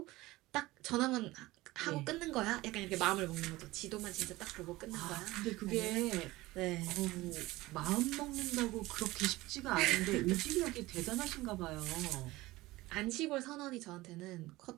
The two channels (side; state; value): left; quieter; 19.1 dB